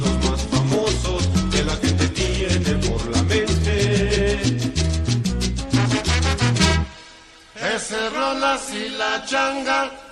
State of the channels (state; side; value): identical; both; correlation 1.00